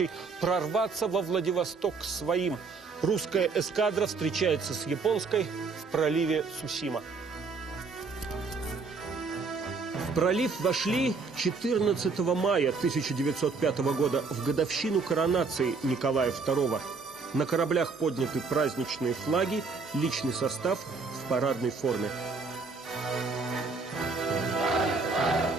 прорваться во Владивосток к своим. Русская эскадра встречается с японской в проливе Цусима. В пролив вошли 14 мая 1905 года, в годовщину коронации Николая II. На кораблях подняты праздничные флаги, личный состав в парадной форме.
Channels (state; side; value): quieter; left; 4.4 dB